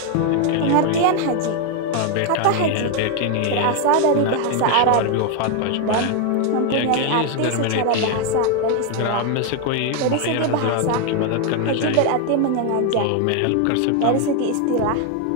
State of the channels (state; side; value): different; both; correlation 0.01